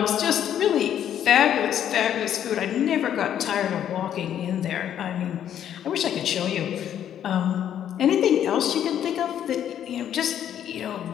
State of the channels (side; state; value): right; quieter; 10.1 dB